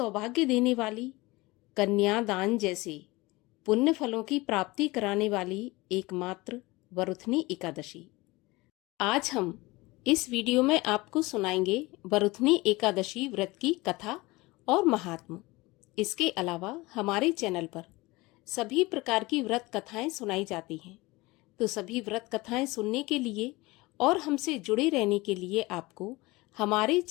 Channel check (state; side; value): quieter; right; 22.0 dB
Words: देने वाली, कन्यादान जैसे पुण्य फलों की प्राप्ति कराने वाली एकमात्र वरुथनी एकादशी। आज हम इस वीडियो में आपको सुनाएंगे वरुथनी एकादशी व्रत की कथा और महात्म। इसके अलावा हमारे चैनल पर सभी प्रकार की व्रत कथाएं सुनाई जाती हैं, तो सभी व्रत कथाएं सुनने के लिए और हमसे जुड़े रहने के लिए आपको हमारे